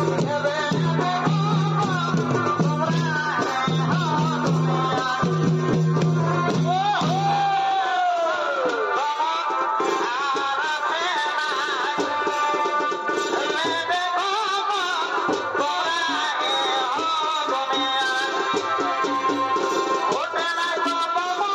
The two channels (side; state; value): both; identical; correlation 1.00